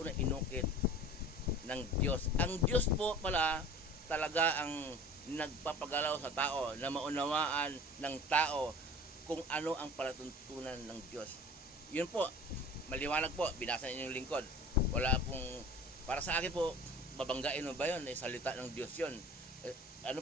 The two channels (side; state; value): both; normal; correlation 0.42